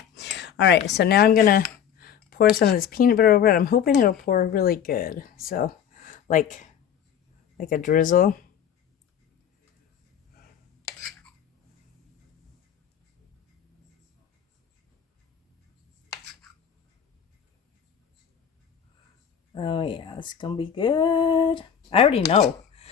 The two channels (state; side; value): quieter; right; 8.6 dB